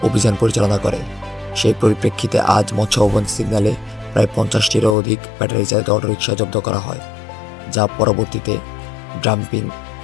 অভিযান পরিচালনা করে। সেই পরিপ্রেক্ষিতে আজ মৎস্য ভবন সিগন্যালে প্রায় 50টিরও অধিক ব্যাটারি চালিত অটোরিকশা জব্দ করা হয়, যা পরবর্তীতে ডাম্পিং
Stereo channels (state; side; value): drops out; right; at 5.0 s